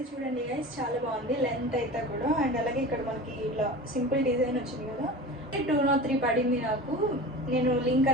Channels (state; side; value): normal; both; correlation 0.34